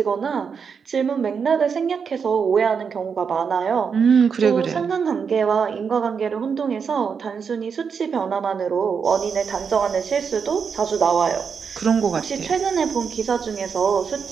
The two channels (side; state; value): left; quieter; 6.2 dB